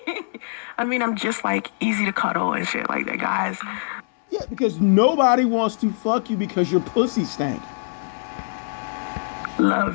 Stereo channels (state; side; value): silent; right; 63 dB below the other